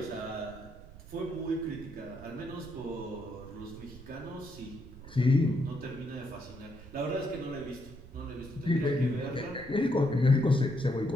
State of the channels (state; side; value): noise; right; rumble, 17 dB below the sound